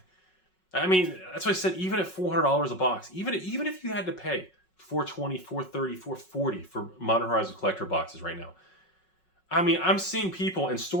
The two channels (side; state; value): right; late; 5.4 ms